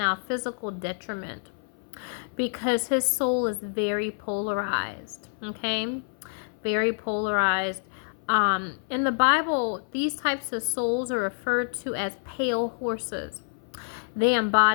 physical detriment, because his soul is very polarized. Okay, very polarized. In the Bible, these types of souls are referred to as pale horses. They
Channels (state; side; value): silent; right; 56 dB below the other